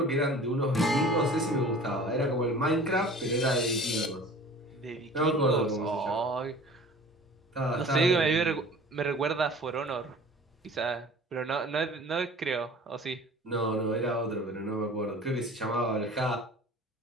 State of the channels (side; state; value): both; normal; correlation 0.44